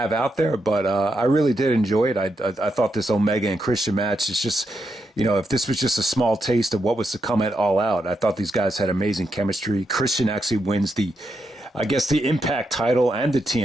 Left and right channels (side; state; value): both; normal; correlation 0.83